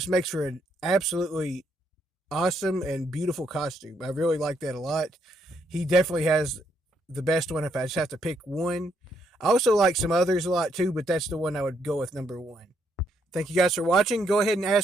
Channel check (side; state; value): both; normal; correlation 0.74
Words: makes for an absolutely awesome and beautiful costume. I really like that a lot. He definitely has the best one if I just have to pick one. I also like some others a lot too, but that's the one I would go with number one. Thank you guys for watching. Go ahead and